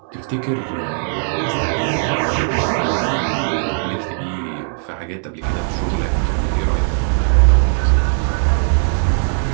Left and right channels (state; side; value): silent; left; digital silence